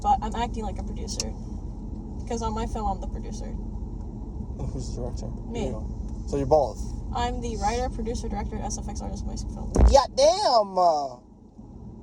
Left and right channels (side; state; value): both; identical; correlation 1.00